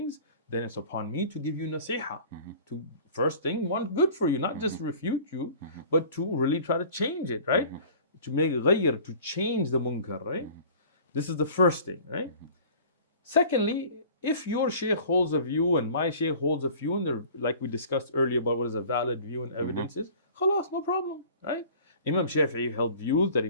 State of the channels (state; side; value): inverted; both; correlation -0.45